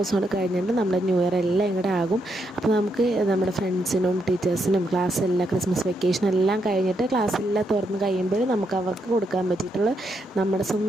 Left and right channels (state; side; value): normal; both; correlation 0.80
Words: കൊണ്ട് കഴിഞ്ഞിട്ട് നമ്മുടെ ന്യൂ ഇയർ എല്ലാം ഇങ്ങോട്ട് ആകും. അപ്പോൾ നമുക്ക് നമ്മുടെ ഫ്രണ്ട്സിനും ടീച്ചേഴ്സിനും ക്ലാസ്സെല്ലാം ക്രിസ്മസ് വെക്കേഷൻ എല്ലാം കഴിഞ്ഞിട്ട് ക്ലാസ്സെല്ലാം തുറന്ന് കഴിയുമ്പോൾ നമുക്ക് അവർക്ക് കൊടുക്കാൻ പറ്റിയിട്ടുള്ള നമ്മുടെ